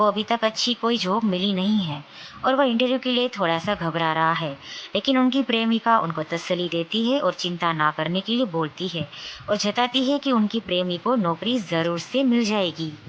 अभी तक अच्छी कोई जॉब मिली नहीं है और वह इंटरव्यू के लिए थोड़ा सा घबरा रहा है। लेकिन उनकी प्रेमिका उनको तसल्ली देती है और चिंता ना करने के लिए बोलती है और जताती है कि उनकी प्रेमी को नौकरी ज़रूर से मिल जाएगी,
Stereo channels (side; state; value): both; identical; correlation 1.00